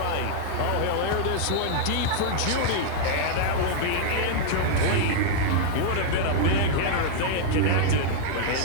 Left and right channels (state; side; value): different; both; correlation -0.01